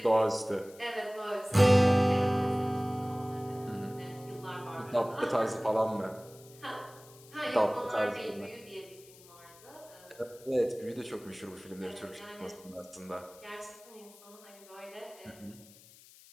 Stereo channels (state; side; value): noise; left; hiss, 23 dB below the sound